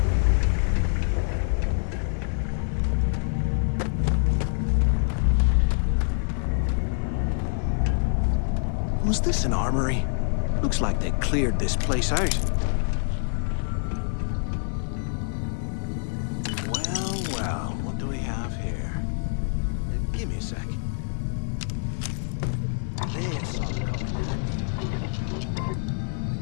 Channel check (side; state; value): right; silent; 55 dB below the other